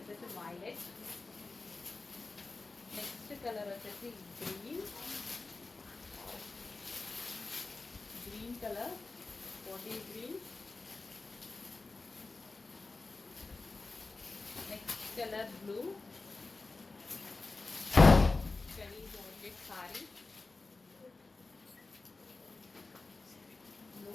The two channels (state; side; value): quieter; right; 3.6 dB